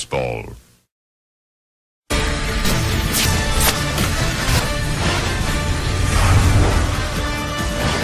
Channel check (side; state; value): both; identical; correlation 1.00